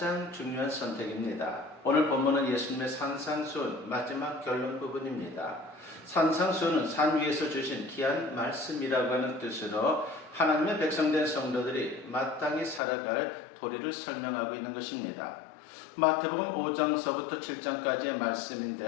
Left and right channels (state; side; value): drops out; right; at 12.8 s